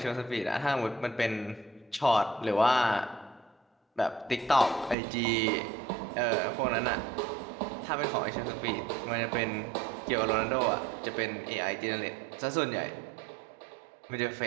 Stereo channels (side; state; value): left; drops out; at 5.0 s